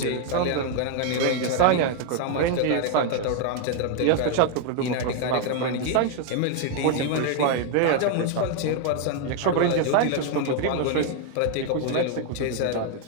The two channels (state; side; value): different; both; correlation 0.00